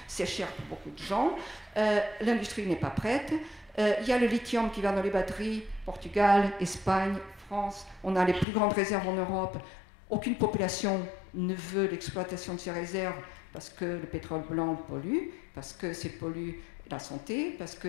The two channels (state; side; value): drops out; right; at 8.5 s